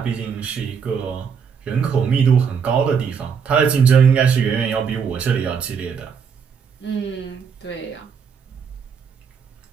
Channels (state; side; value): quieter; left; 6.5 dB